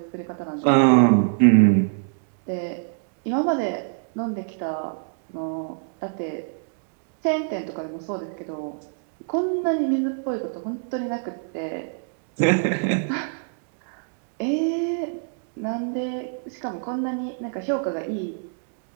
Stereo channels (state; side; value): silent; left; digital silence